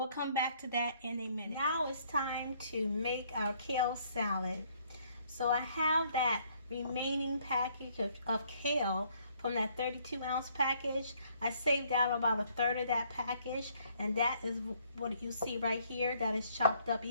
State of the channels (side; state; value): both; inverted; correlation -0.65